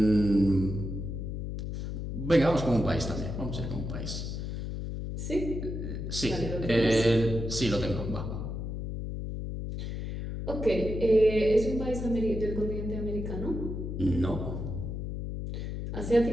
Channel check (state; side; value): noise; left; hum, 5 dB below the sound